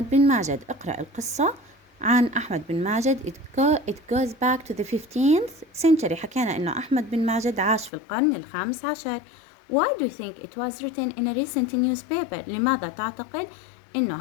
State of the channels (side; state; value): right; drops out; at 7.9 s